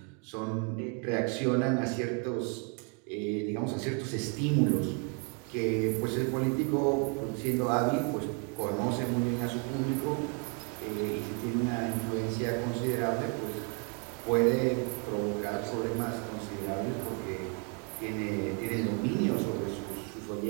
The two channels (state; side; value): quieter; left; 37.1 dB